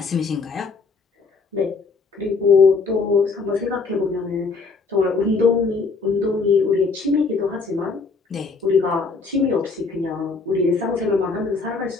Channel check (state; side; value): quieter; right; 4.4 dB